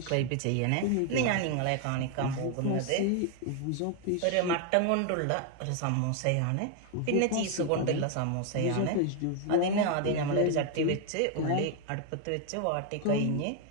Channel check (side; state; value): both; different; correlation 0.01